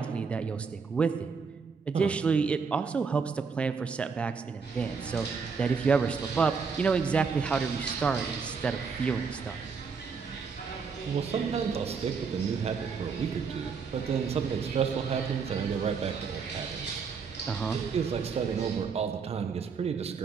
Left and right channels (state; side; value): quieter; left; 5.5 dB